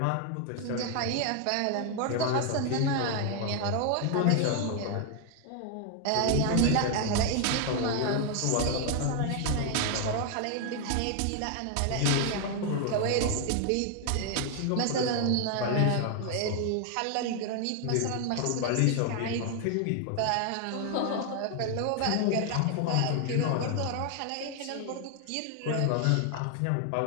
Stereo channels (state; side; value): different; both; correlation 0.00